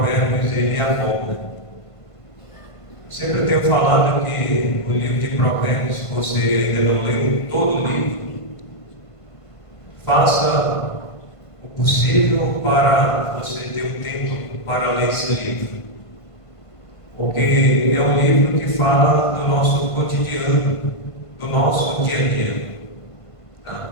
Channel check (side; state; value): right; late; 1.5 ms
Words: ele aborda. Sempre tenho falado que o livro de Provérbios, se você ainda não leu todo o livro, faça o possível para você ter um tempo para ler esse livro. Porque é um livro que fala do nosso cotidiano, do nosso dia a dia.